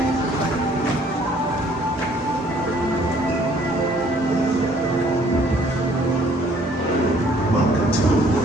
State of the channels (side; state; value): both; normal; correlation 0.60